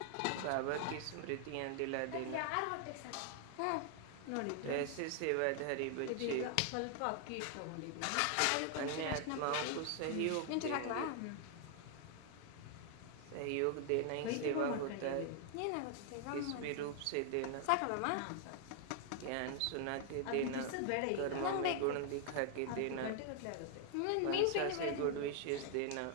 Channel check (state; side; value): different; both; correlation 0.00